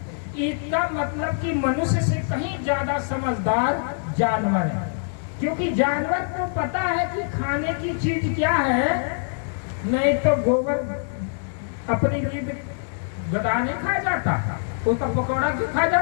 इसका मतलब कि मनुष्य से कहीं ज्यादा समझदार जानवर है, क्योंकि जानवर को पता है कि खाने की चीज क्या है। नहीं तो गोबर अपनी लीद गधा नहीं खा जाता, उसका पकौड़ा क्यों खा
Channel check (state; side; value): silent; right; digital silence